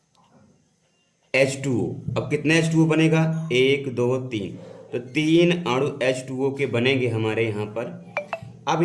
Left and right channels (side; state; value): both; identical; correlation 1.00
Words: H2O। अब कितने H2O बनेगा, 1 2 3, तो 3 अणु H2O के बनेंगे हमारे यहाँ पर। अब